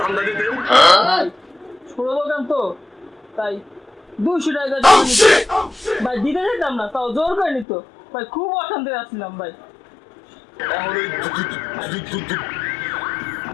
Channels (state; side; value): drops out; right; at 7.7 s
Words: দিতেন? ছোট দোকান তো তাই 200 টাকা জমা নিত ভাই। দিতে যেতাম না, তাও জোর করে নিত ভাই। খুব অশান্তি আসছিলাম ভাই। এখন ওই